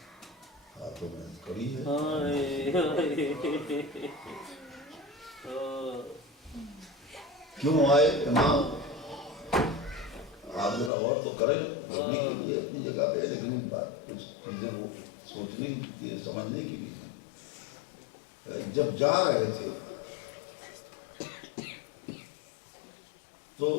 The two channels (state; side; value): drops out; right; at 10.9 s